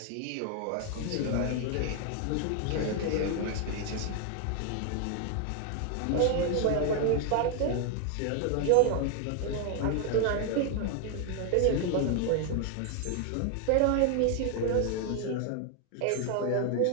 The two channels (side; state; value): both; different; correlation 0.00